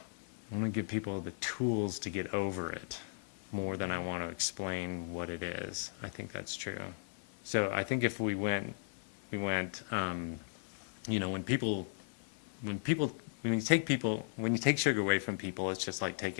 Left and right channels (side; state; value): right; silent; 53 dB below the other